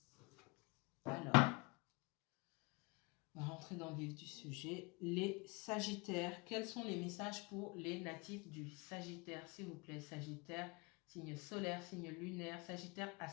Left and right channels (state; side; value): quieter; right; 27.7 dB